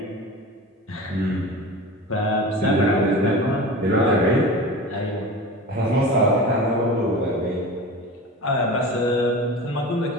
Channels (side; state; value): both; normal; correlation 0.33